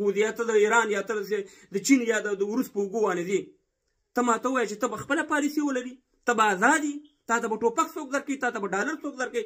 ځې، یا ته د ایران، یا ته د چین یا د روس په اوږو باندې ځې. ته ماته ووایه چې ته به خپله پالیسي ولري، ته به ازاد یې، تا ته به ټوپک څوک درکوي، تا ته به ډالر څوک درکوي،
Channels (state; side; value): identical; both; correlation 1.00